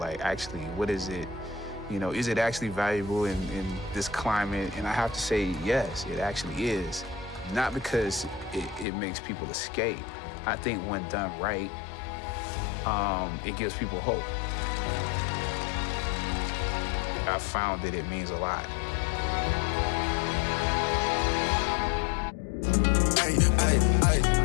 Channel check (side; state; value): right; drops out; at 8.8 s